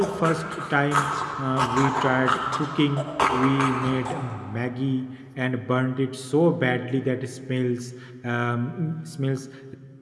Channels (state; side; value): identical; both; correlation 1.00